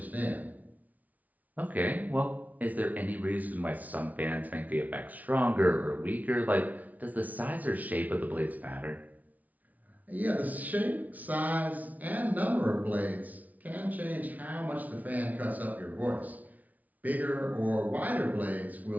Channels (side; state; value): left; late; 0.075 ms